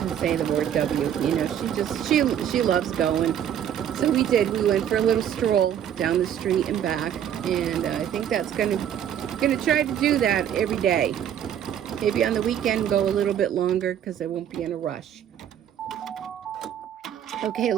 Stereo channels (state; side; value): quieter; left; 9.7 dB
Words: say the word W. You know, she loves going. So we went for a little stroll down the street and back, and I think that's gonna try to do that every day. Maybe on the weekend go a little bit longer because I won't be in a rush. Okay, it